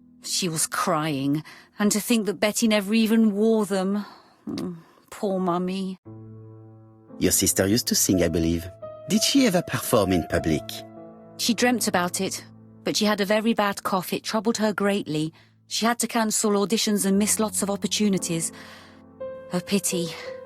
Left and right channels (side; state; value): both; identical; correlation 1.00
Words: she was crying. And to think that Betty never even wore them. Poor Mummy. Your sister used to sing, I believe. Did she ever perform in public? She dreamt about it, but she had a very bad cough. It troubled her greatly. She had to cancel auditions and miss lots of opportunities. A pity.